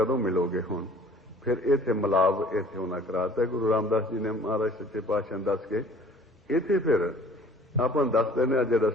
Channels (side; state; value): both; normal; correlation 0.51